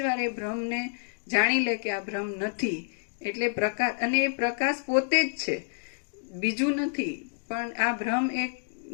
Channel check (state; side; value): silent; right; digital silence